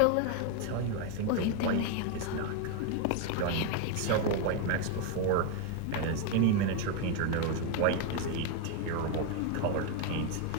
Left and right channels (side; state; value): both; different; correlation 0.01